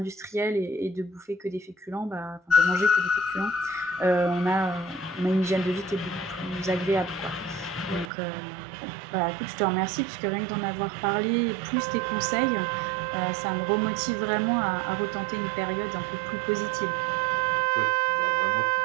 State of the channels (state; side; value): drops out; left; at 8.1 s